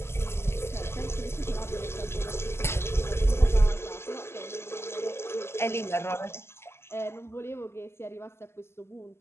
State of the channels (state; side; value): late; right; 0.12 ms